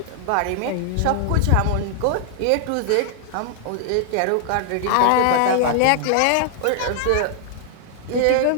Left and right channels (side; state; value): both; different; correlation 0.00